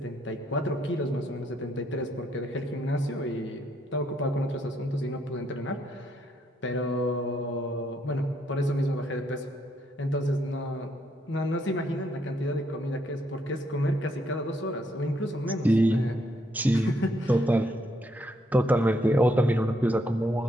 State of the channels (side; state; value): both; normal; correlation 0.74